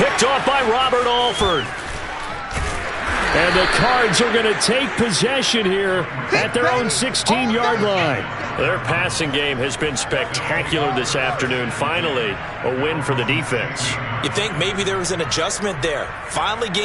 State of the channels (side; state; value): both; identical; correlation 1.00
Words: off by Robert Alford. And the Cards are going to take possession here at their own 16-yard line. Their passing game has been spectacular this afternoon. Finally, a win for the defense. You think maybe there was an adjustment there. Finally